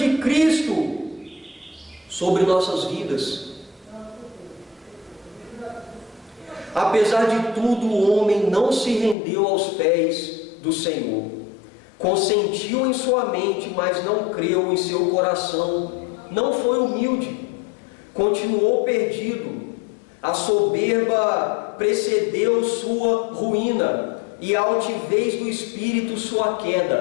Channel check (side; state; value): right; drops out; at 9.2 s